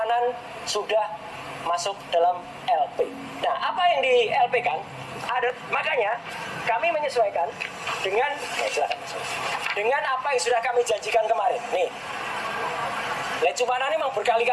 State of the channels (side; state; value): both; identical; correlation 1.00